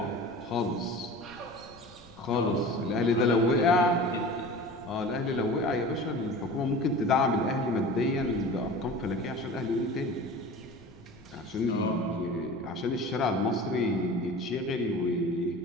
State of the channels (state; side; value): noise; left; rumble, 27 dB below the sound